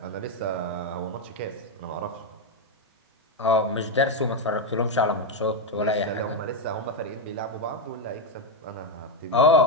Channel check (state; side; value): normal; both; correlation 0.04